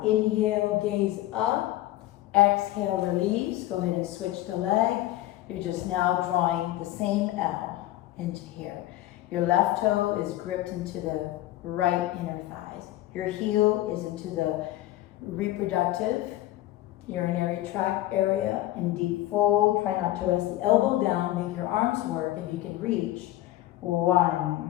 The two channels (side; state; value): right; quieter; 15.5 dB